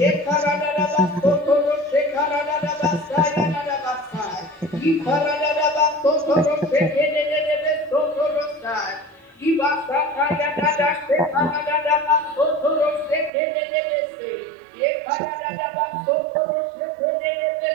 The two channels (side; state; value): left; drops out; at 13.3 s